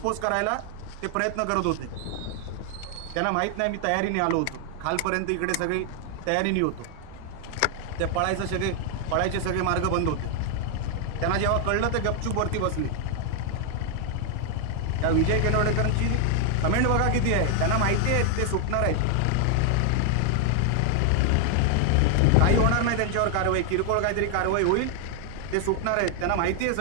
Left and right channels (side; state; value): both; different; correlation 0.00